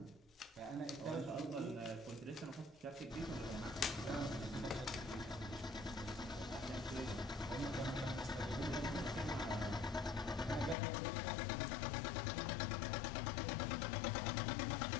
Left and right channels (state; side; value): drops out; right; at 10.8 s